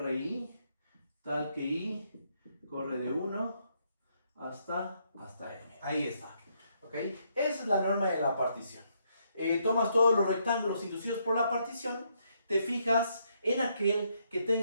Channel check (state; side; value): inverted; both; correlation -0.75